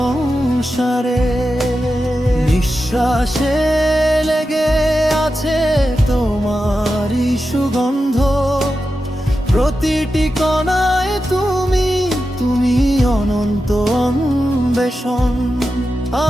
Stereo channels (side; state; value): both; normal; correlation 0.91